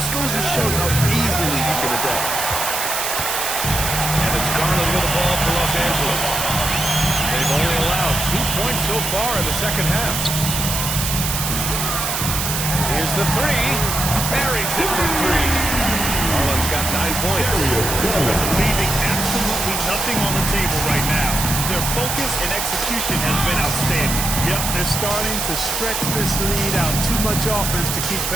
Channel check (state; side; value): noise; right; hiss, 1 dB below the sound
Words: goes to show how easily he can adapt. And it's Garland with the ball for Los Angeles. They've only allowed 2 points so far in the second half. Here's the three. Buries it from three. Garland's got 9 points. Leaving absolutely nothing on the table right now. Their focus and execution has been outstanding. Yep, they're starting to stretch this lead out. Too much offense to keep